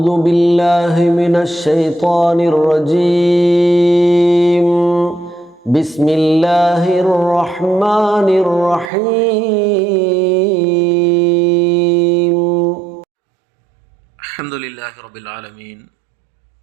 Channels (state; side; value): drops out; left; at 8.9 s